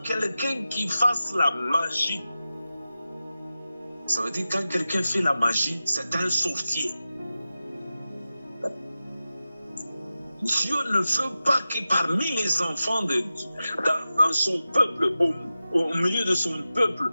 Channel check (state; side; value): inverted; both; correlation -0.94